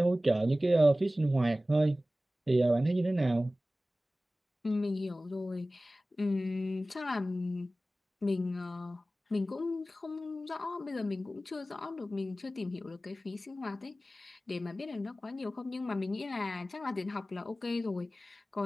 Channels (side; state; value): both; normal; correlation 0.96